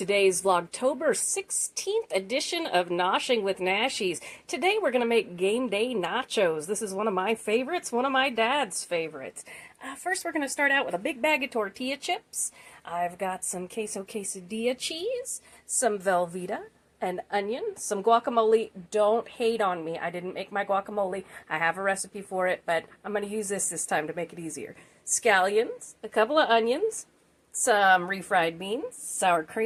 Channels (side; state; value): both; identical; correlation 1.00